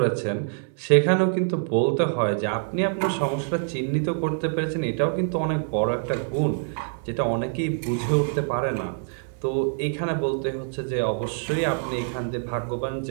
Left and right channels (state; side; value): silent; left; digital silence